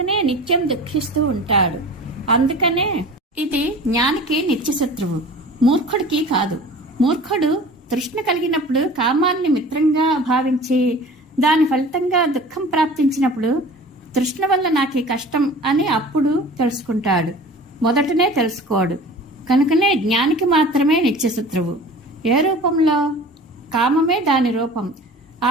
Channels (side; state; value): both; normal; correlation 0.41